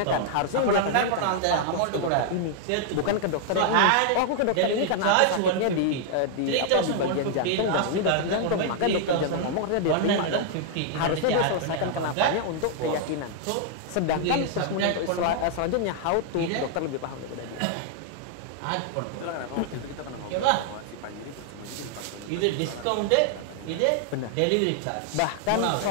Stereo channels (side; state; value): both; different; correlation 0.00